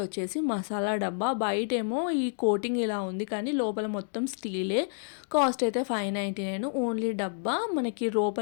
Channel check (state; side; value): silent; right; digital silence